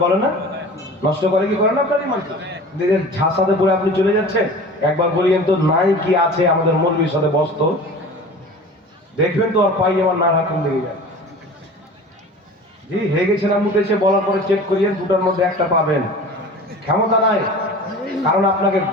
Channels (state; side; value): normal; both; correlation 0.39